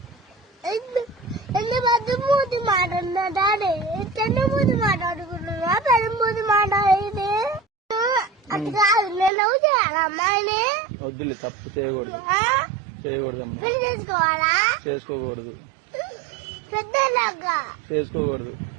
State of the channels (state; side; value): drops out; left; at 9.3 s